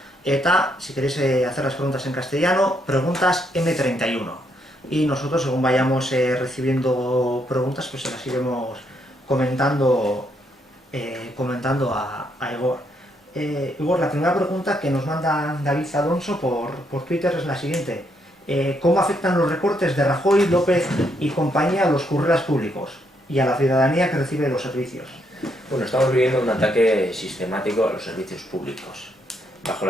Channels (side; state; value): both; normal; correlation 0.75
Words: eta si queréis hacer las preguntas en castellano, preguntas M31. Y nosotros, según vayamos recibiendo preguntas, pues se las iremos comentando a Igor. Igor, la primera pregunta que nos manda David Alonso por Twitter es la siguiente. ¿Cómo afectan los recortes de Rajoy, López y compañía a los currelas públicos y a la ciudadanía que recibe los servicios? Bueno, estamos viviendo un ataque sistemático a los servicios públicos. Bajo